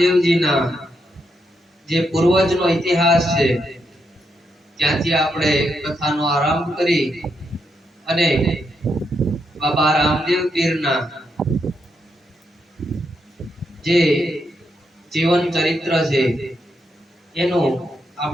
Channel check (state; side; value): normal; both; correlation 0.81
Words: જે પૂર્વજનો ઇતિહાસ છે ત્યાંથી આપણે કથાનો આરંભ કરી અને બાબા રામદેવ પીરના જે જીવન ચરિત્ર છે એનું